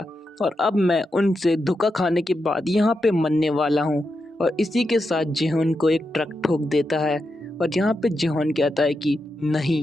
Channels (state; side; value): normal; both; correlation 0.86